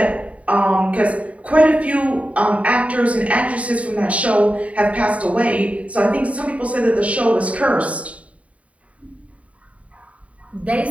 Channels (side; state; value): left; late; 0.066 ms